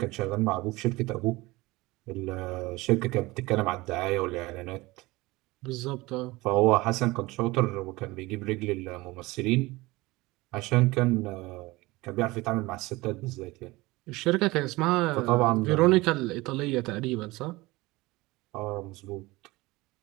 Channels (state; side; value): quieter; left; 21.3 dB